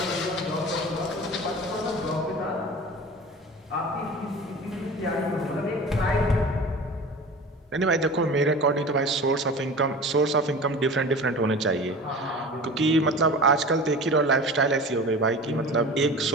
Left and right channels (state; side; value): normal; both; correlation 0.36